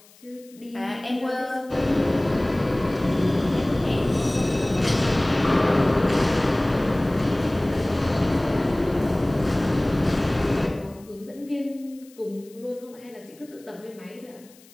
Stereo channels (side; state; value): left; noise; hiss, 27 dB below the sound